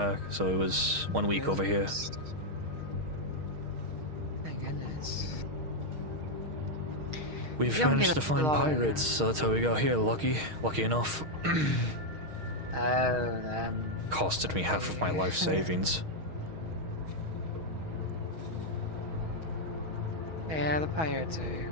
so it was 1 week over here. Thank goodness. We've managed to find pirates, so that's how we got here. Lucky enough. Costed me half of my life savings. Yeah, the pirates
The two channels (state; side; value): late; left; 6.4 ms